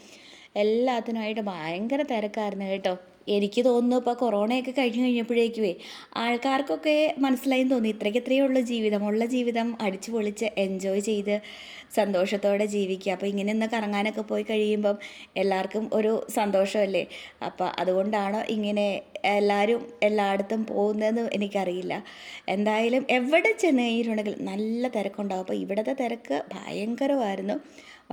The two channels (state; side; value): identical; both; correlation 1.00